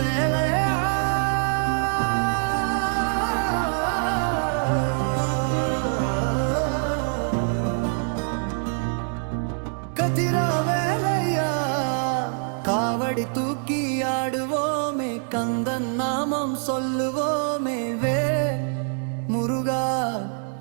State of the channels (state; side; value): silent; left; 60 dB below the other